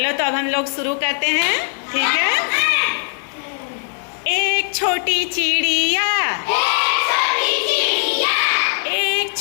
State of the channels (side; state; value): right; silent; digital silence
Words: तो अब हम लोग शुरू करते हैं, ठीक है? एक छोटी चिड़िया, एक